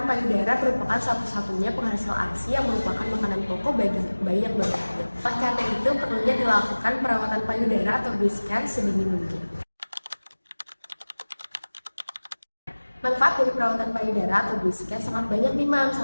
payudara merupakan satu-satunya penghasil ASI yang merupakan makanan pokok bagi bayi yang baru lahir. Oleh karena itu, perlunya dilakukan perawatan payudara atau breast care sedini mungkin. Manfaat dari perawatan payudara atau breast care sangat banyak nih, Mam.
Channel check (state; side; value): inverted; both; correlation -1.00